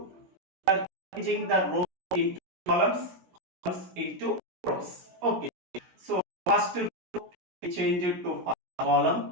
changing the rows into columns, columns into rows. Okay, so first row we change it to first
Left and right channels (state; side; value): late; left; 17 ms